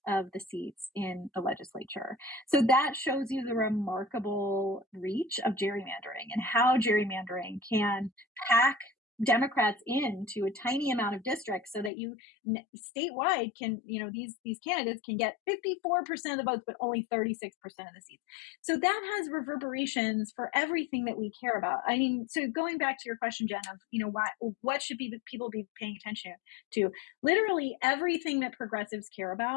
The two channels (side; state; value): right; drops out; at 11.9 s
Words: of the seats in the legislature. So that shows you the remarkable reach of gerrymandering and how gerrymandering can pack Democrats into a tiny amount of districts so that you statewide can, these candidates can get 54% of the votes, but only 36% of the seats. So that has reverberations for everything that we care about. I mean, so going back to your question, Jen, of, what should people be paying attention to? Literally everything that progressives care